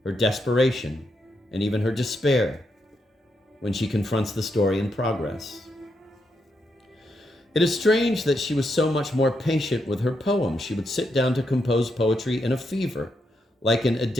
her desperation, and even her despair when she confronts the story in progress. It is strange that she was so much more patient with her poems. She would sit down to compose poetry in a fever, like an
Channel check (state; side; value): normal; both; correlation 0.81